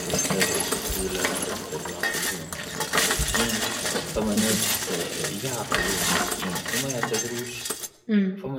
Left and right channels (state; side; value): identical; both; correlation 1.00